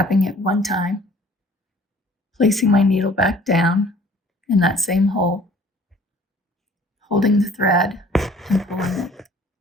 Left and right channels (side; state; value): both; normal; correlation 0.53